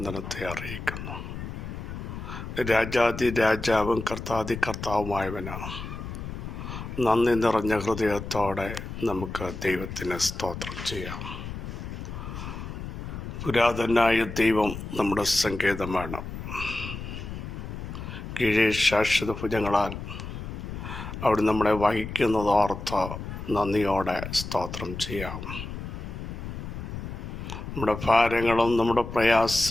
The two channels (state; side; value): noise; left; rumble, 8 dB below the sound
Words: അറിയിക്കുന്നു. രാജാതി രാജാവും കർത്താതി കർത്താവുമായവന് നന്ദി നിറഞ്ഞ ഹൃദയത്തോടെ നമുക്ക് ദൈവത്തിന് സ്തോത്രം ചെയ്യാം. പുരാതനായ ദൈവം നമ്മുടെ സങ്കേതമാണ്. കീഴേ ശാശ്വത ഭുജങ്ങളാൽ അവിടെ നമ്മളെ വഹിക്കുന്നതോർത്ത് നന്ദിയോടെ സ്തോത്രം ചെയ്യാം. നമ്മുടെ ഭാരങ്ങളും നമ്മുടെ